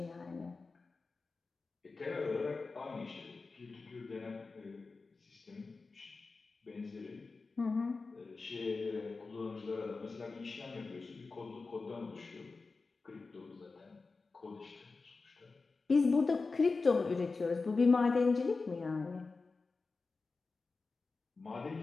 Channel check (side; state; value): right; quieter; 4.0 dB